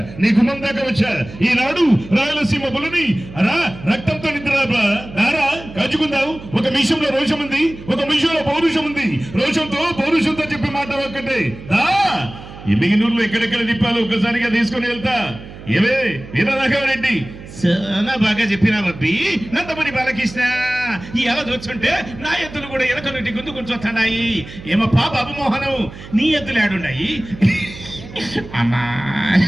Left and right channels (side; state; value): right; noise; hum, 15 dB below the sound